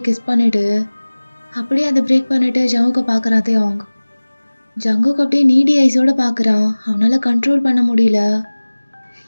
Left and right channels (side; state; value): both; inverted; correlation -1.00